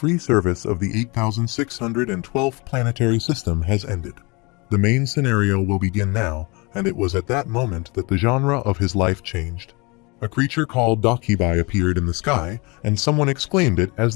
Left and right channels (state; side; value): quieter; right; 27.5 dB